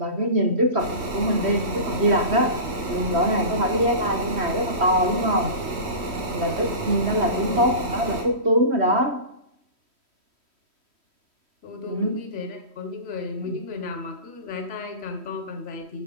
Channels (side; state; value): left; late; 3.2 ms